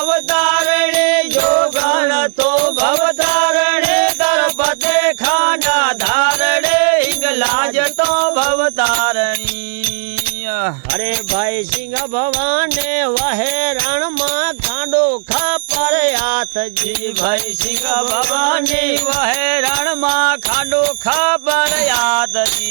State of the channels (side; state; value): left; silent; digital silence